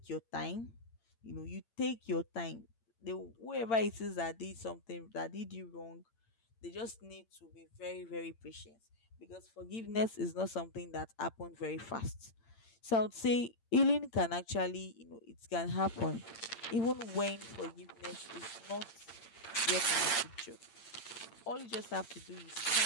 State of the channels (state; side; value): late; right; 8.8 ms